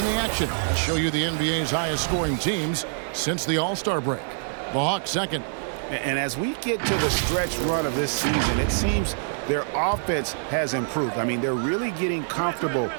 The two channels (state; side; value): silent; left; digital silence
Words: the action, I'll show you the NBA's highest scoring teams since the All-Star break. The Hawks second. And as we get to the stretch run of this season, it seems their offense has improved. I mean, they're really getting comfortable